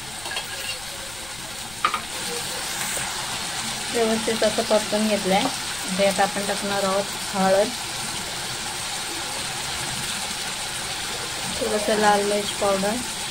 व्यवस्थित असं परतून घेतलंय। त्यात आपण टाकणार आहोत हळद, थोडंसं लाल मिर्च पावडर,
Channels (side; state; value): left; noise; rumble, 17 dB below the sound